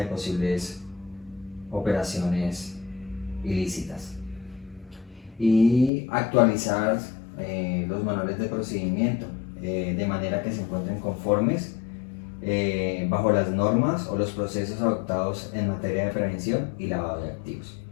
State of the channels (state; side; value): drops out; right; at 5.9 s